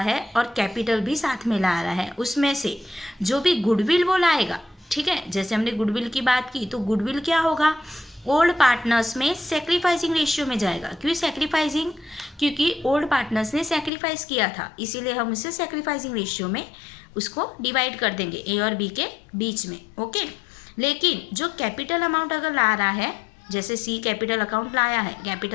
है और कैपिटल भी साथ में ला रहा है, उसमें से जो भी गुडविल वो लाएगा, ठीक है, जैसे हमने गुडविल की बात की तो गुडविल क्या होगा, ओल्ड पार्टनर्स में सेक्रीफाइसिंग रेशियो में जाएगा। क्यों सेक्रीफाइसिंग, क्योंकि ओल्ड पार्टनर्स ने सेक्रीफाइस किया था, इसीलिए हम उसे सेक्रीफाइसिंग रेशियो में उसको डिवाइड कर देंगे ए और बी के बीच में। ओके, लेकिन जो कैपिटल अमाउंट अगर ला रहा है, जैसे सी कैपिटल अकाउंट लाया है,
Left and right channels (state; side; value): drops out; right; at 13.9 s